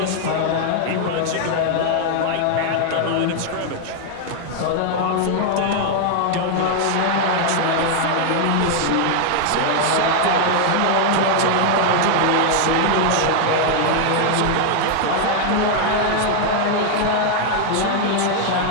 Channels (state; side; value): different; both; correlation 0.00